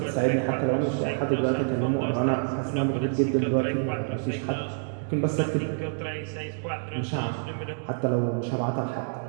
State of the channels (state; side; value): silent; left; digital silence